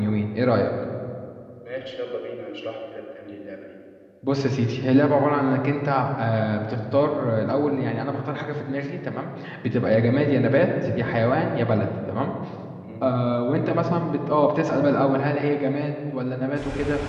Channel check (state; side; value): identical; both; correlation 1.00